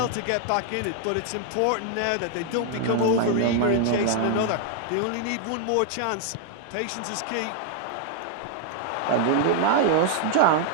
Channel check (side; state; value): both; different; correlation 0.00